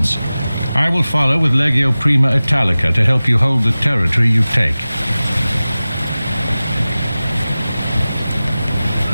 I will follow with Legio Prima Italica to help you hold the territory you take.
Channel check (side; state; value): both; inverted; correlation -0.97